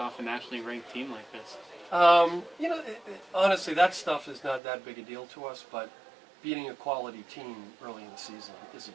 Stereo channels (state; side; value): drops out; left; at 4.6 s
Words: a nationally ranked team like this? Honestly, that stuff is not that big a deal to us, but beating a quality team early in the season is a